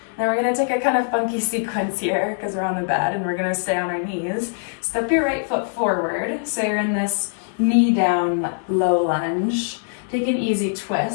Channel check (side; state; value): right; silent; 60 dB below the other